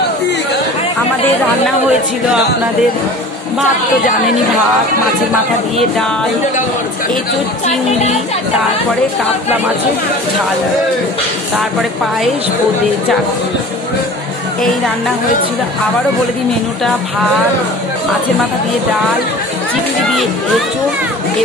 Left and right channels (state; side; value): normal; both; correlation 0.41